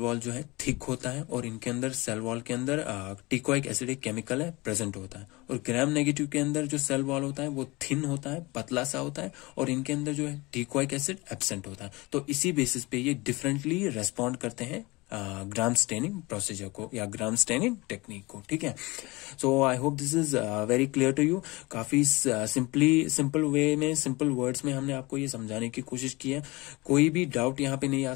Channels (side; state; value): right; quieter; 23.2 dB